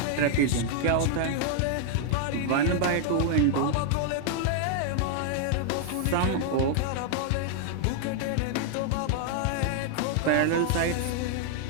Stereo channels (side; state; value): both; different; correlation 0.00